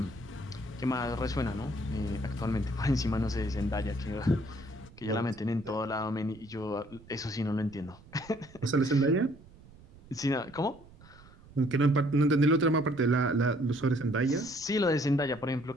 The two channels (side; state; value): right; noise; rumble, 23 dB below the sound